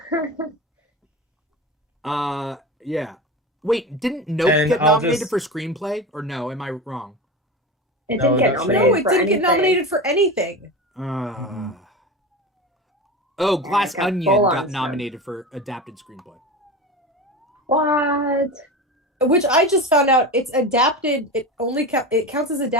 Yeah. Wait, didn't Nope get nominated for screenplay, or no? Am I wrong? It didn't get nominated. No, it didn't get nominated for anything. Oh, Glass Onion got nominated for adapted screenplay. What? Which I just found out it's adapted. It only it counts as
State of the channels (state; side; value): normal; both; correlation 0.26